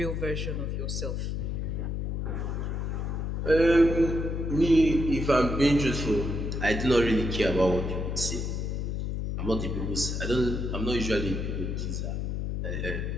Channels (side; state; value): left; noise; hum, 2 dB below the sound